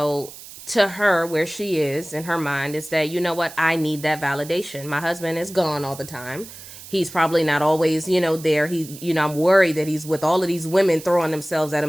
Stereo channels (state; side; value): noise; right; hiss, 16 dB below the sound